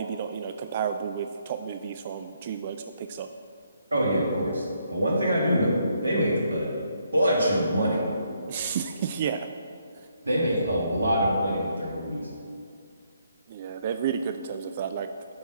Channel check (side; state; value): both; inverted; correlation -0.73